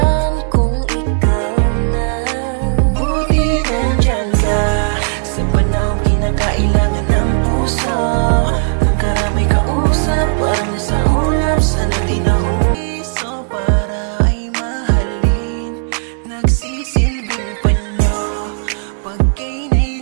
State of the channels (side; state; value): left; silent; 59 dB below the other